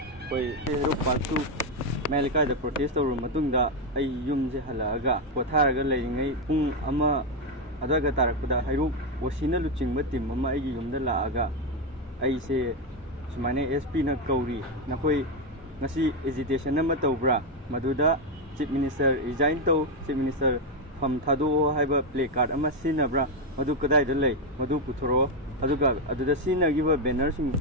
koi Hero Pansu Melika the protest or Matunda ay yum halaga Potaraga laying pung ama adaga tarakuda Hero Wasina luching matim mama ay yum the laaga ay say Sumane SP na Kauri Nakoi Nasi hesitation na matobra Maduda Chief Minister resign to Chief Minister Pamtado Haiba play card ama sinabra Madu Kadai the lay Madu Putoro Aduga Aduda Sina give a banner sing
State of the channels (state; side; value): normal; both; correlation 0.05